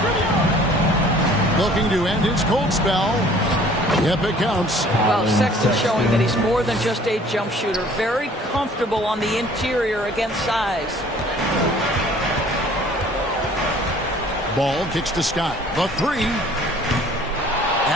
Looking to end his cold spell. Yep, it counts. Well, Sexton showing that he's more than just a jump shooter. Very comfortable on the interior against size. Ball kicks to Scott. The 3.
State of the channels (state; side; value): normal; both; correlation 0.53